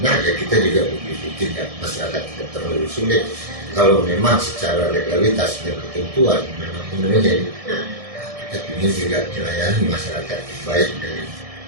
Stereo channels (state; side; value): late; left; 1.6 ms